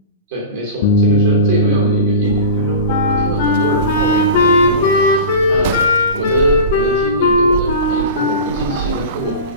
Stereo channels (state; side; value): inverted; both; correlation -0.30